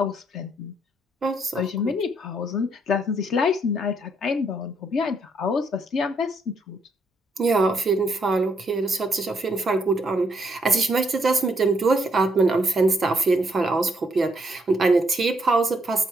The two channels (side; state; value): both; normal; correlation 0.73